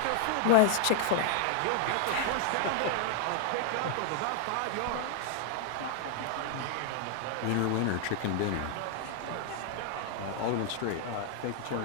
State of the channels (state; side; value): different; both; correlation 0.00